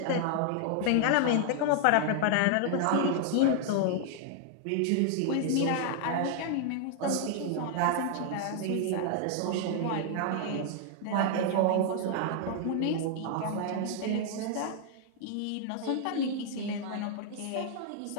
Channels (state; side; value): different; both; correlation 0.00